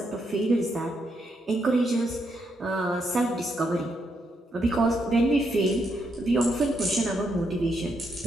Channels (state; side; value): normal; both; correlation 0.79